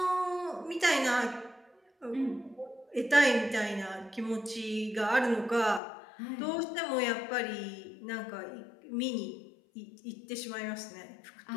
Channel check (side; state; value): right; drops out; at 5.8 s